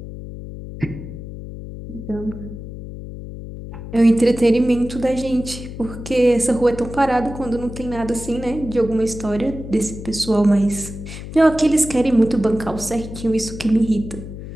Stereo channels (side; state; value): left; noise; hum, 11 dB below the sound